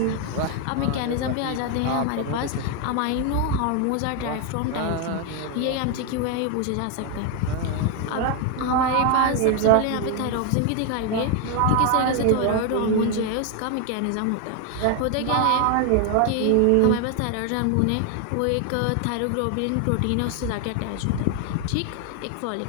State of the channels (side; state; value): both; different; correlation 0.01